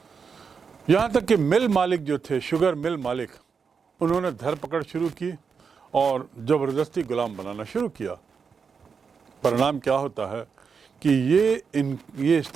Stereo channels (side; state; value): left; quieter; 5.8 dB